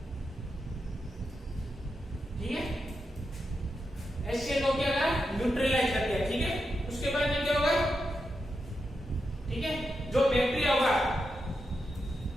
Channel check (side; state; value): both; normal; correlation 0.86